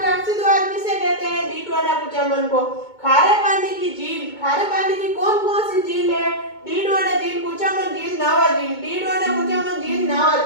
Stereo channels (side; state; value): right; late; 2.2 ms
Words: किसे कहते हैं? डीडवाना कुचामन को। खारे पानी की झील, खारे पानी की कौन कौन सी झील है? डीडवाना झील, कुचामन झील, नावा झील। डीडवाना कुचामन झील, नावा